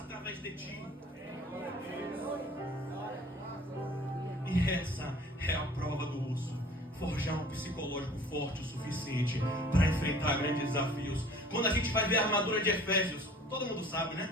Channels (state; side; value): normal; both; correlation 0.49